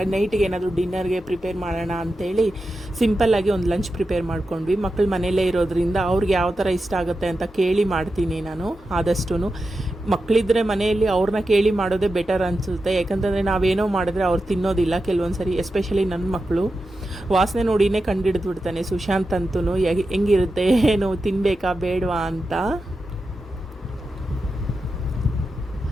ನೈಟಿಗೆ ಏನಾದರೂ ಡಿನ್ನರ್ಗೆ ಪ್ರಿಪೇರ್ ಮಾಡೋಣ ಅಂಥೇಳಿ ಸಿಂಪಲ್ಲಾಗಿ ಒಂದು ಲಂಚ್ ಪ್ರಿಪೇರ್ ಮಾಡ್ಕೊಂಡ್ವಿ. ಮಕ್ಕಳು ಮನೆಯಲ್ಲೇ ಇರೋದ್ರಿಂದ ಅವ್ರಿಗೆ ಯಾವ ಥರ ಇಷ್ಟ ಆಗುತ್ತೆ ಅಂತ ಕೇಳಿ ಮಾಡ್ತೀನಿ ನಾನು. ಆದಷ್ಟು ಮಕ್ಕಳಿದ್ರೆ ಮನೆಯಲ್ಲಿ ಅವ್ರನ್ನ ಕೇಳಿ ಮಾಡೋದೇ ಬೆಟರ್ ಅನಿಸುತ್ತೆ. ಯಾಕಂತಂದರೆ ನಾವೇನೋ ಮಾಡಿದ್ರೆ ಅವ್ರು ತಿನ್ನೋದಿಲ್ಲ ಕೆಲವೊಂದು ಸರಿ. ಎಸ್ಪೆಷಲಿ ನನ್ನ ಮಕ್ಕಳು ವಾಸನೆ ನೋಡಿನೇ ಕಂಡಿಡಿದು ಬಿಡ್ತಾನೆ ಸುಶಾಂತ್ ಅಂತೂ, ಹೆಂಗಿರುತ್ತೆ ಏನು ತಿನ್ನಬೇಕಾ ಬೇಡವಾ ಅಂತ.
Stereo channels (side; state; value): both; normal; correlation 0.90